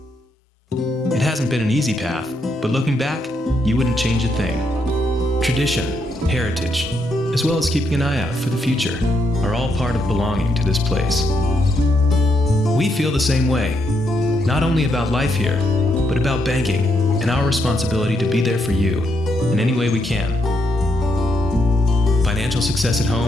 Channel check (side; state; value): both; normal; correlation 0.78